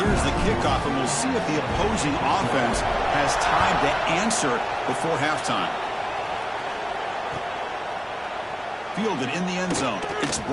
the kickoff, and we'll see if the opposing offense has time to answer before halftime. Fielded in the end zone. It's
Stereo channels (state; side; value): identical; both; correlation 1.00